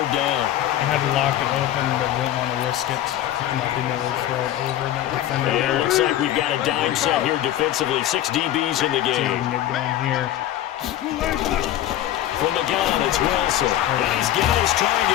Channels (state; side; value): quieter; right; 12.6 dB